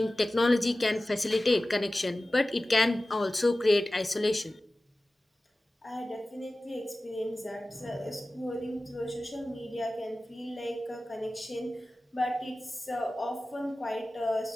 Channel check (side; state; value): both; normal; correlation 0.96